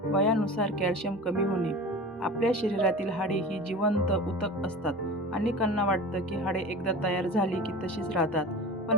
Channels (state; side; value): normal; both; correlation 0.34